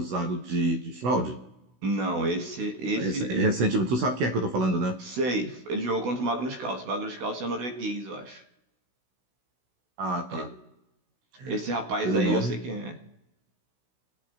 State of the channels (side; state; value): left; late; 16 ms